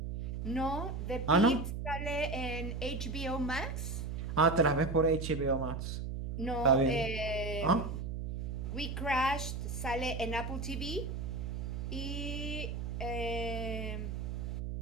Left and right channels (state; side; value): noise; right; hum, 4 dB below the sound